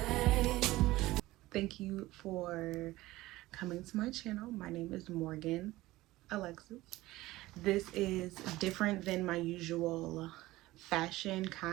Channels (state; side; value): quieter; left; 17.9 dB